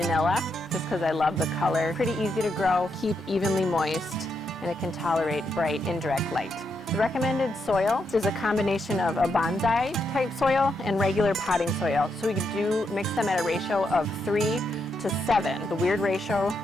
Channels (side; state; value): both; normal; correlation 0.81